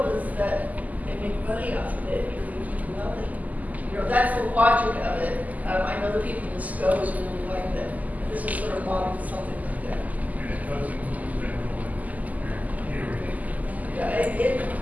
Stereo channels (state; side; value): late; left; 0.078 ms